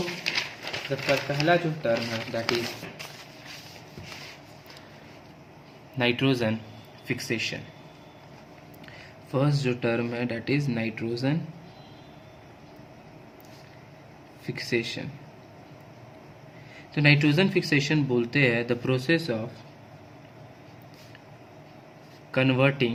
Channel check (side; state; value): both; identical; correlation 1.00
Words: पहला जो टर्म है that is nitrogen fixation. First जो टर्म है दैट इज नाइट्रोजन फिक्सेशन। तो नाइट्रोजन फिक्सेशन बोलते हैं the process of